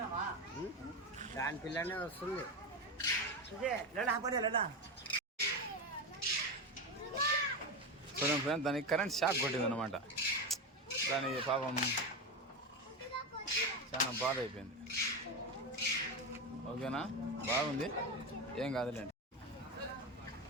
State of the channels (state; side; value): normal; both; correlation 0.16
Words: దాని పిల్లనే వస్తుంది. చూడండి ఫ్రెండ్, దానికి కరెంట్ షాక్ కొట్టింది అనమాట. దానికి పాపం చాలా బాధ అయిపోయింది. ఓకేనా, బాగుంది, ఏం కాదులేండి.